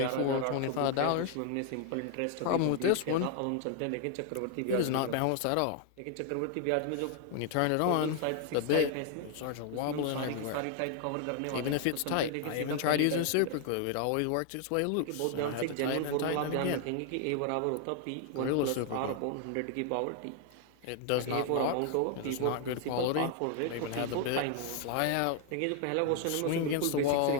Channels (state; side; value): different; both; correlation 0.00